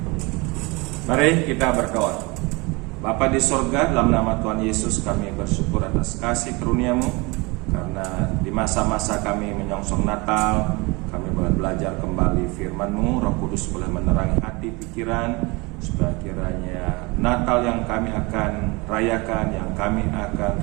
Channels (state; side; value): quieter; left; 26.3 dB